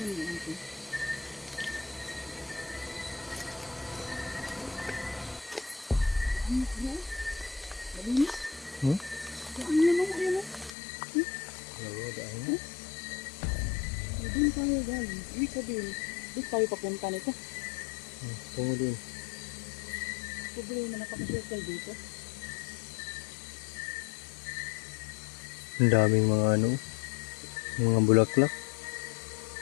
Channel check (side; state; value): right; drops out; at 10.7 s